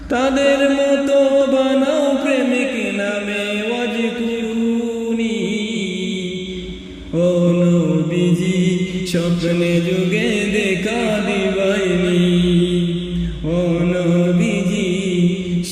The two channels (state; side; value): identical; both; correlation 1.00